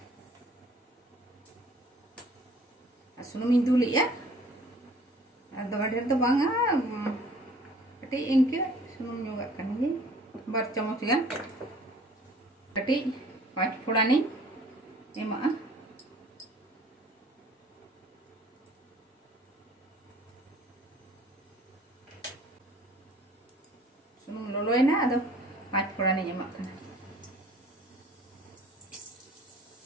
Sunum induli ya. Ada wadah tu bangga, kati ingke sunum juga kan ni, bar camus kan, kati 5 phoda ni, emang sunum loloy na, ada 5 phoda ni emang kan.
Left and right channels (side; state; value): both; normal; correlation 0.52